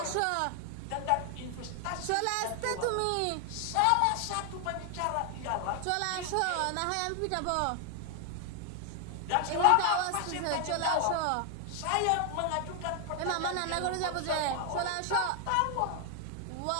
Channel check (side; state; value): both; different; correlation 0.00